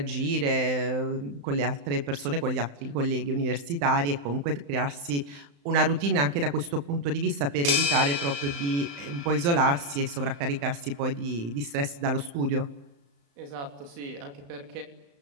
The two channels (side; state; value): left; late; 35 ms